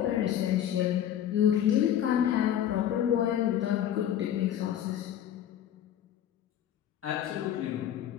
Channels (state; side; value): quieter; right; 10.6 dB